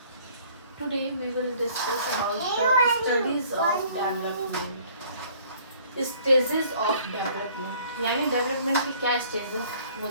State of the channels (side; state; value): both; inverted; correlation -0.56